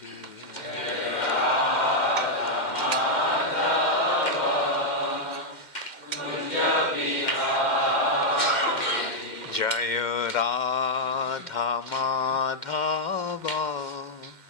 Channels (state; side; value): late; right; 2.1 ms